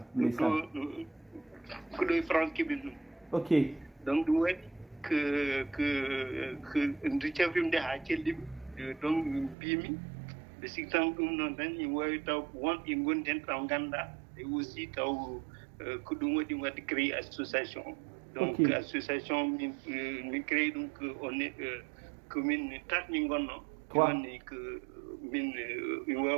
Que le France qui est ok. Donc, nous que nous avons des hackers donc bimi. Le système comme nous avons eu une bonne Ganda et aussi que nous avons créé l'association. Donc, l'association nous crée donc on est commune Tatningono. On est que min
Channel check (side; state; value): left; drops out; at 9.6 s